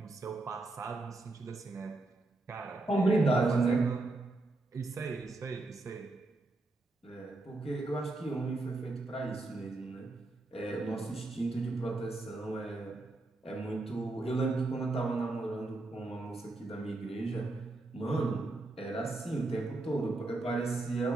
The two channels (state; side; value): quieter; left; 3.0 dB